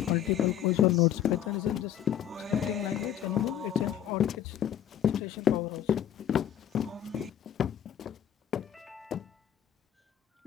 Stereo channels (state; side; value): quieter; right; 10.3 dB